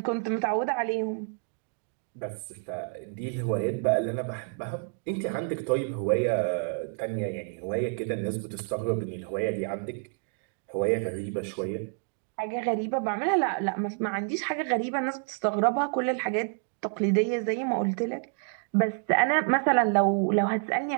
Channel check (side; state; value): left; silent; 57 dB below the other